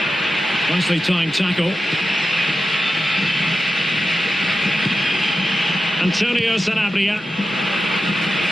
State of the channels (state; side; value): normal; both; correlation 0.91